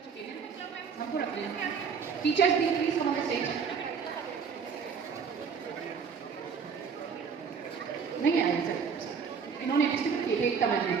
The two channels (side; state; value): left; quieter; 6.2 dB